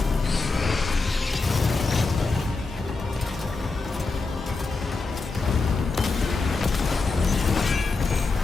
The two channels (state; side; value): quieter; right; 3.9 dB